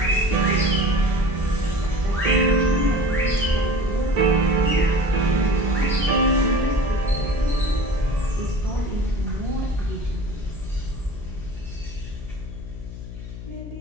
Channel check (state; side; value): noise; left; hum, 11 dB below the sound